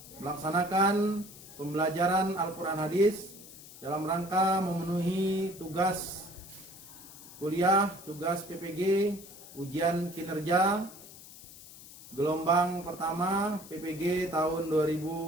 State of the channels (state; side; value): noise; left; hiss, 17 dB below the sound